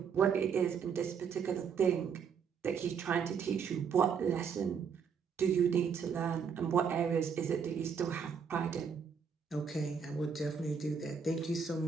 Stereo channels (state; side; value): quieter; left; 6.5 dB